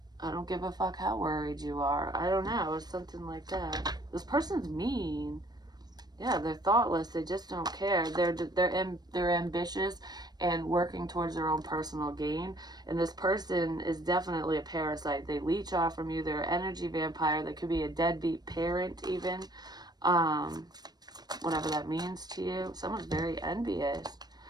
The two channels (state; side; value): late; left; 0.19 ms